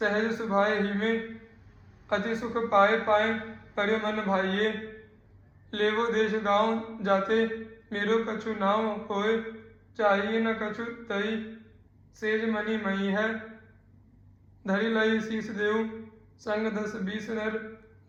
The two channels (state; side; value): identical; both; correlation 1.00